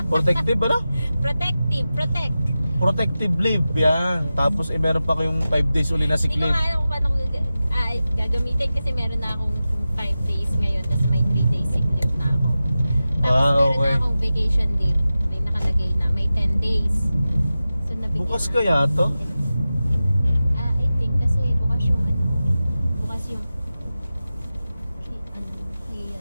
Protective, ano? Protective. Protect. Protective leave, yan. Tapos meron pa kayong 5 days uli na sick Hindi ko leave. nga alam kung paano ko gagamitin kasi meron na akong 5 days ngayon tapos may 3 days sick leave na ako. Tapos meron okay. na akong vacation leave. May nakalagay na may 10 days. So nabigyan Bukas na- kaya to? I think kasi bukas yung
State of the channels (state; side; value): inverted; both; correlation -0.94